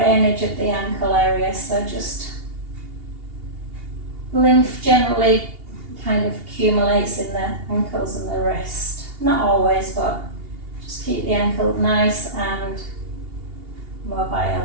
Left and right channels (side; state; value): left; late; 2.8 ms